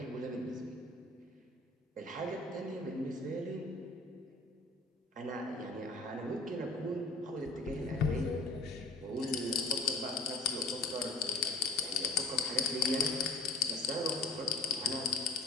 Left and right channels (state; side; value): quieter; right; 3.2 dB